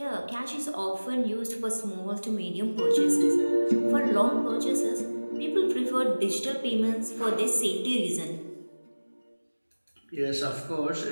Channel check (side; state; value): both; inverted; correlation -1.00